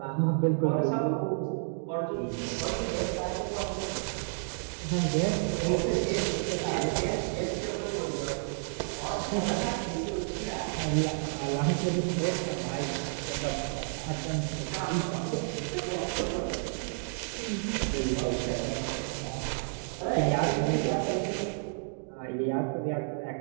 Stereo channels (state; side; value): silent; left; digital silence